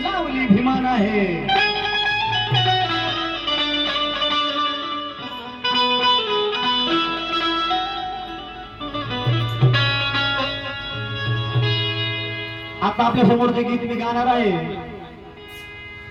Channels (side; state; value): both; identical; correlation 1.00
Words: लावली भीमान आहे. आता आपल्या समोरचे गीत मी गाणार आहे.